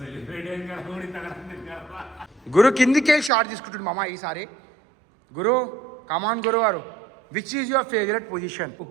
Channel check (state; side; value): drops out; left; at 3.3 s